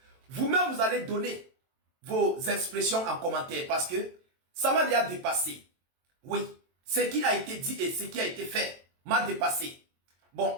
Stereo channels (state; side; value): late; left; 22 ms